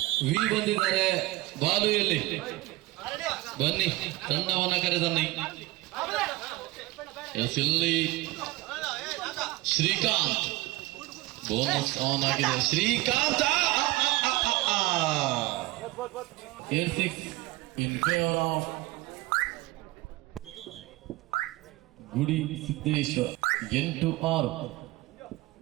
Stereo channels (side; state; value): left; quieter; 19.3 dB